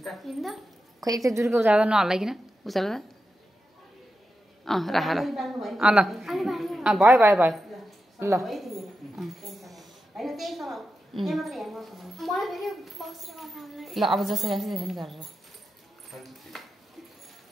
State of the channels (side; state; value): both; normal; correlation 0.90